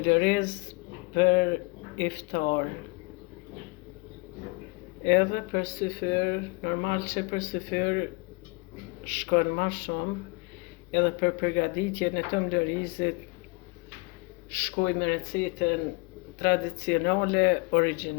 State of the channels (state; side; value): quieter; right; 26.7 dB